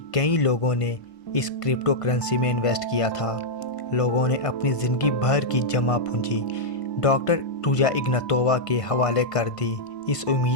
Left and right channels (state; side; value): late; right; 1.5 ms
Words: कई लोगों ने इस क्रिप्टो करेंसी में इन्वेस्ट किया था। लोगों ने अपनी ज़िंदगी भर की जमा पूंजी डॉक्टर रुजा इग्नातोवा के हवाले कर दी, इस